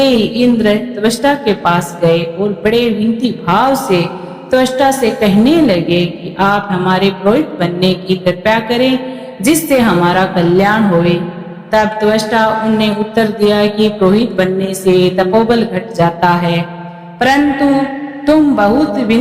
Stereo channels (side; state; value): both; identical; correlation 1.00